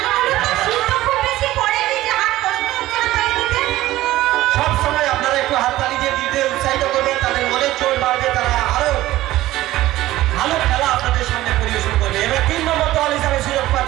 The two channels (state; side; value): quieter; left; 16.0 dB